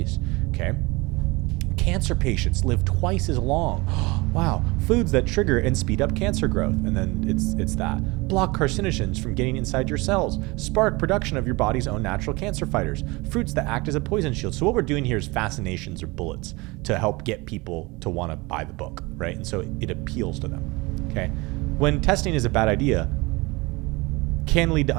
Okay. Cancer patients live twice as long. Wow. Foods that trigger and speed up cancer growth. And then it's that. Block carcinogens from getting inside your cells. Spark production of your body's own natural cancer fighters. Fruits that act as a poison shield. So what we're doing here is fascinations or bullets to help get people to want to buy the book, right? And so it appeals to them. Okay. When testing is a bad idea, can lead to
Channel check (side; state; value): left; quieter; 24.2 dB